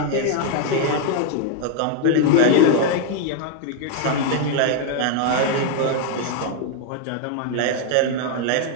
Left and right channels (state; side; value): different; both; correlation 0.00